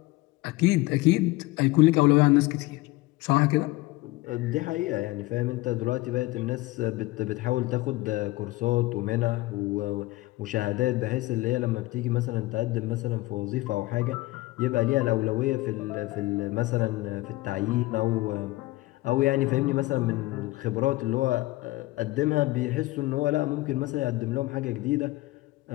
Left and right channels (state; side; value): quieter; right; 19.9 dB